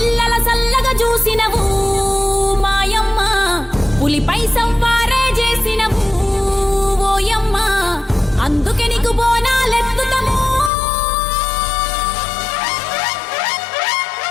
సల్లగా చూసినవు మాయమ్మ, పులిపై సంవారే చేసినవు ఓయమ్మ, అందుకే నీకు బోనాలెత్తుతము.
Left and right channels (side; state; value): right; drops out; at 10.7 s